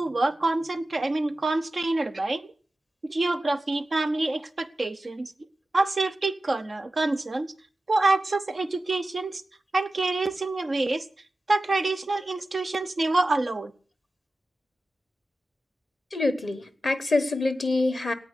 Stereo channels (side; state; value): both; normal; correlation 0.94